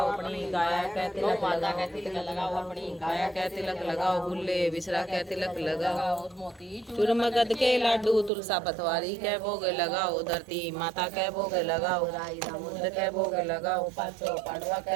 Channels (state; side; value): drops out; left; at 8.3 s